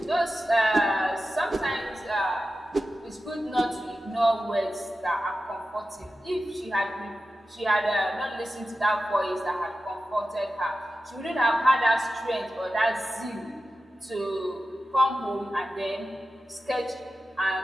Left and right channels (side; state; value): both; normal; correlation 0.93